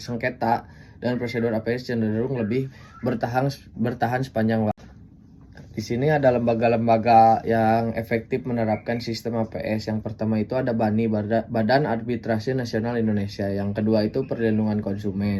dan prosedur APS cenderung lebih bertahan sepanjang waktu. Di sini ada lembaga-lembaga yang efektif menerapkan sistem APS. Yang pertama itu ada BANI, Badan Arbitrase Nasional Indonesia. Yang kedua itu Perlindungan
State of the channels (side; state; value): both; identical; correlation 1.00